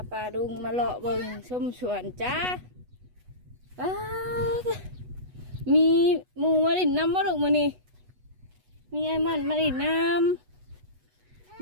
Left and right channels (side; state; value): left; late; 8.1 ms